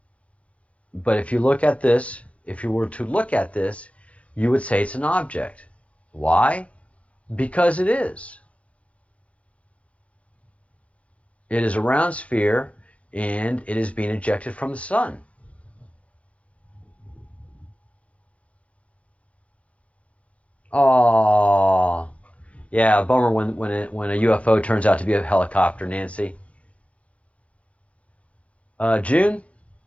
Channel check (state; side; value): late; right; 0.064 ms